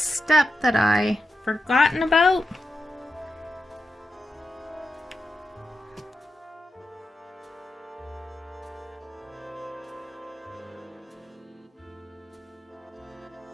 that I forgotten about.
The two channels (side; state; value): both; normal; correlation 0.88